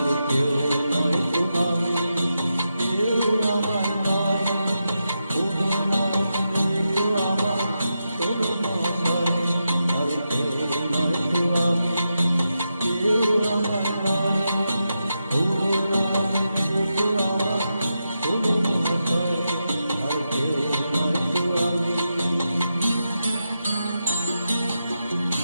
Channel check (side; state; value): both; inverted; correlation -0.87